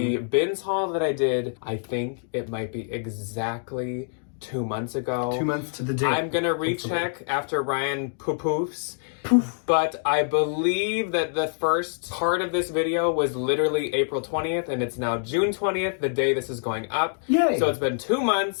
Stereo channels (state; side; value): silent; right; digital silence